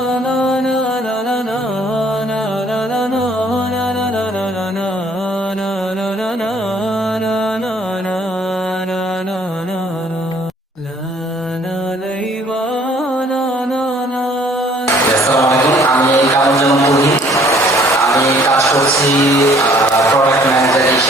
কাজ করছি প্রোডাক্ট ম্যানেজার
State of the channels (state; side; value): normal; both; correlation 0.59